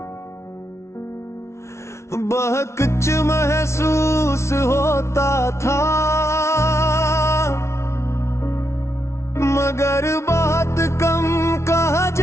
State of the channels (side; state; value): right; late; 0.13 ms